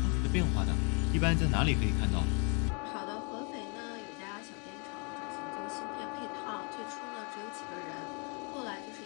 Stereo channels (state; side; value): quieter; right; 35.8 dB